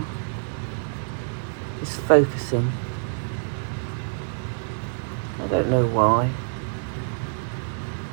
is focusing. I don't know why.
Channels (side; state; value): left; silent; 61 dB below the other